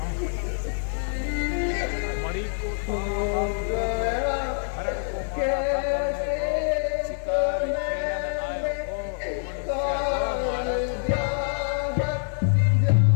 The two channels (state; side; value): silent; right; 59 dB below the other